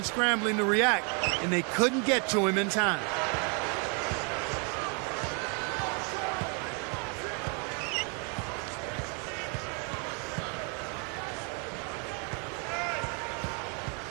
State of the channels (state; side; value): quieter; left; 36.7 dB